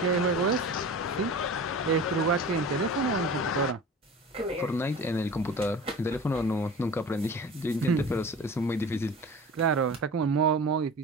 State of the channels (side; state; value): both; normal; correlation 0.37